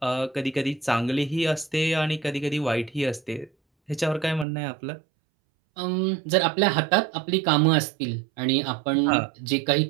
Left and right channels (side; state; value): left; drops out; at 4.5 s